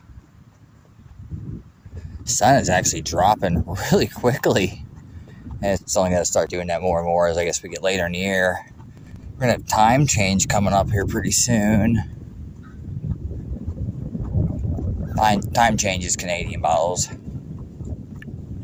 Sun is actually dropping really quickly. And it's only going to start doing that more and more as I guess we get later in the year. We're going to have time change coming up here pretty soon. Time change is Canadian bottles.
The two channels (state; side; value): identical; both; correlation 1.00